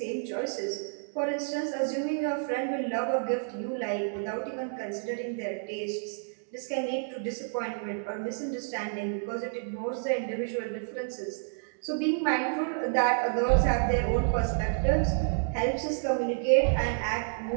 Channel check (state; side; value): silent; left; digital silence